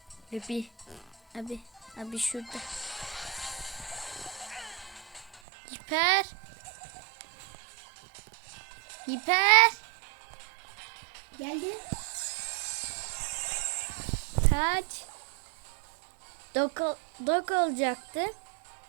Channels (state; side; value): drops out; left; at 5.4 s